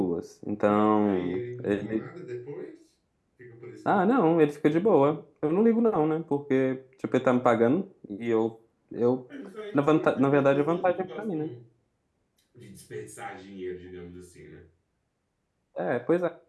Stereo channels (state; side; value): identical; both; correlation 1.00